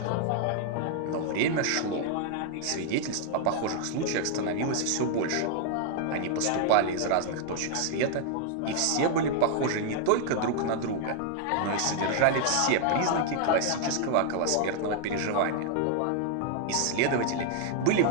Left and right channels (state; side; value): different; both; correlation 0.00